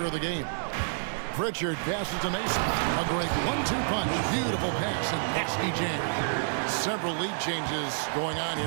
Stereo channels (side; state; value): left; silent; digital silence